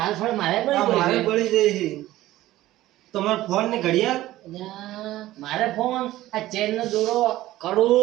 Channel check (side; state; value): left; quieter; 15.7 dB